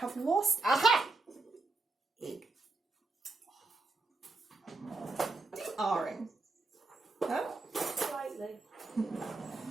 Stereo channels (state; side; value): quieter; left; 3.4 dB